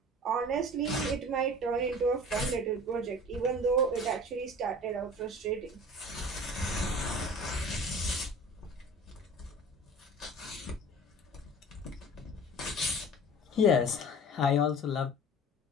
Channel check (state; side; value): normal; both; correlation 0.41